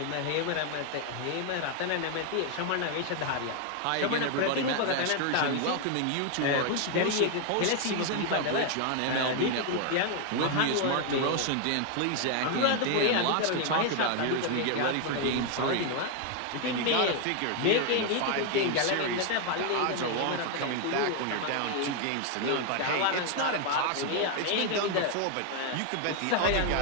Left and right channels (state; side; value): different; both; correlation 0.01